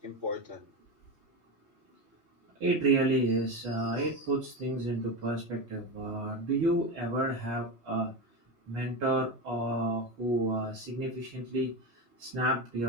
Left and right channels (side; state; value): left; late; 3.2 ms